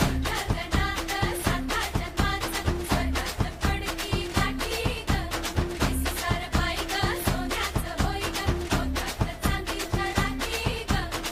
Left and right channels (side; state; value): both; identical; correlation 1.00